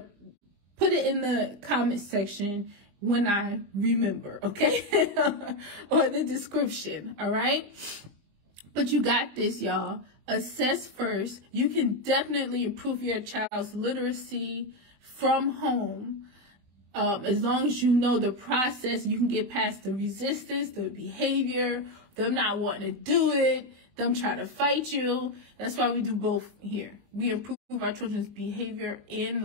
put it in the comment section when I remember, okay? Or the description, all right? But you got this, y'all. Assess first. You can definitely improve your child's literacy from home. As long as you know the process, you can get past the resistance, the behavior, them not wanting to do it, them trying to fight you. That's why we do both here. We improve our children's behavior and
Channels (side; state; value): left; late; 20 ms